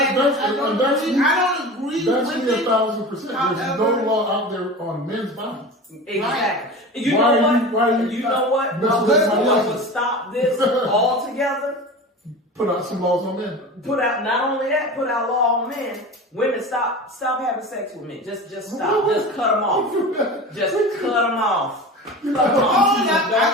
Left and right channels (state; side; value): normal; both; correlation 0.32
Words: don't agree that's with me it. 1,000%. There's However, no law out there on men's bodies. Exactly. You Why know are what? you- why are you You know what? not- What would stop this altogether? Put out some laws on men. Put out not only that, put out law on men. Women, stop having sex with men. Just stop. Just cut them off. Just cut them off. Cut them off. I